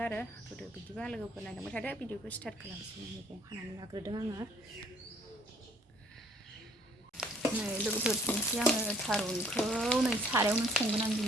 आरो होदो। बिदिबा लोगोफोर नायलांबाय थादो। भिडिअखौ स्टार्ट खालामसै। मैगं हानानै लाग्रोदों आङो। नै लोगोफोर दिनैसो आङो थारुनखौ नै सारायावनो संगोन आं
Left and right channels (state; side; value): normal; both; correlation 0.60